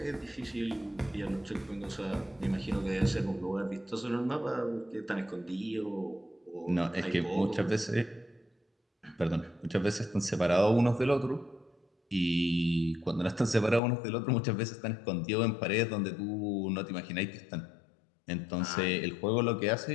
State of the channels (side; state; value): right; drops out; at 13.8 s